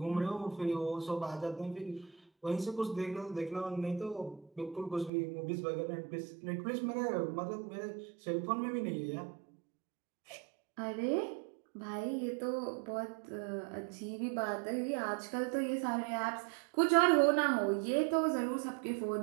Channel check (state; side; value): drops out; left; at 5.1 s